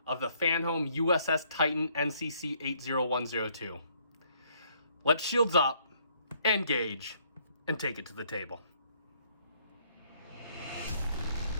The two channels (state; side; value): inverted; both; correlation -0.66